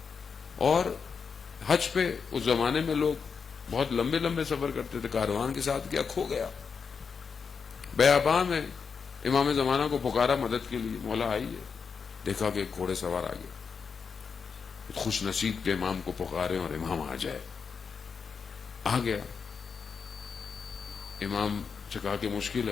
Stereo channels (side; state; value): right; quieter; 5.9 dB